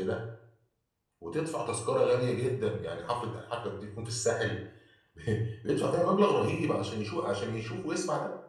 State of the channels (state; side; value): identical; both; correlation 1.00